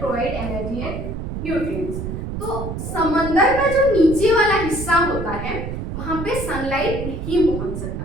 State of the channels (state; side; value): noise; right; rumble, 6 dB below the sound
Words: energy and nutrients. तो समंदर का जो नीचे वाला हिस्सा होता है वहां पे सनलाइट नहीं पहुंच